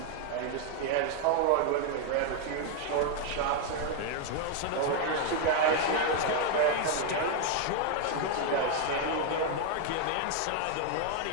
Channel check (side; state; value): both; different; correlation 0.01